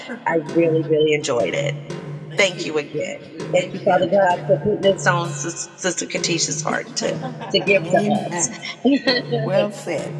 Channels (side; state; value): both; identical; correlation 1.00